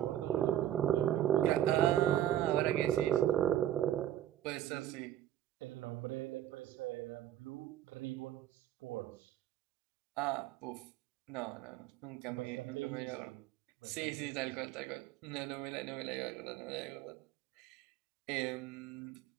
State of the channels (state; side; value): quieter; left; 11.7 dB